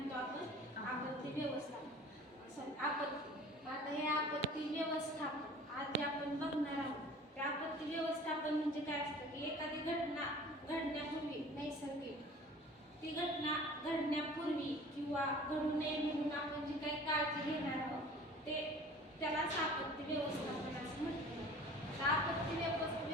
आपण? आपत्ती व्यवस्थापन. आपत्ती. आता हे आपत्ती व्यवस्थापन आज जे आपण बघणार आहोत ते आपत्ती व्यवस्थापन म्हणजे काय असतं की एखादी घटना घडण्यापूर्वी नैसर्गिक ती घटना घडण्यापूर्वी किंवा घडू नये म्हणून आपण जी काही काळजी घेणार आहोत ते त्यालाच आपत्ती व्यवस्थापन असं म्हटलं जातं. आपत्ती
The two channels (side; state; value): both; normal; correlation 0.45